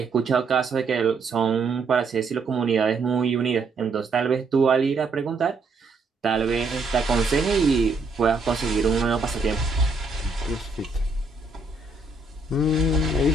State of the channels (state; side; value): quieter; left; 3.7 dB